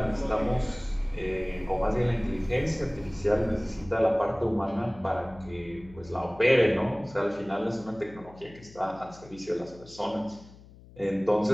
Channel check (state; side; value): noise; left; hum, 21 dB below the sound